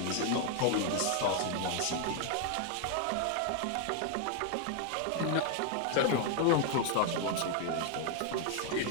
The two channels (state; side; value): different; both; correlation 0.00